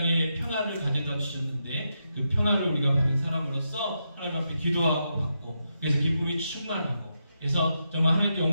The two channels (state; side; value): inverted; both; correlation -0.84